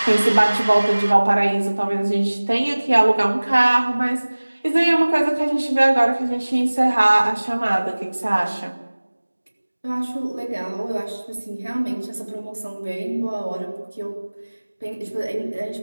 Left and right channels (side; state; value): both; inverted; correlation -1.00